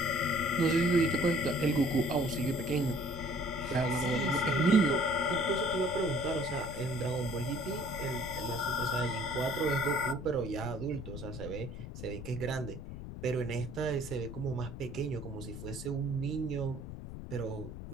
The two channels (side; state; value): left; noise; rumble, 10 dB below the sound